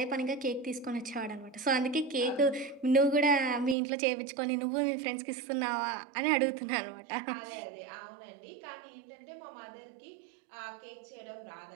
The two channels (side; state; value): left; drops out; at 3.8 s